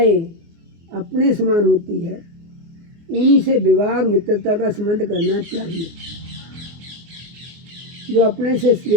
अपने समान होती है, उन्हीं से विवाह और मित्रता का संबंध करना चाहिए। जो अपने से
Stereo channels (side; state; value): left; late; 24 ms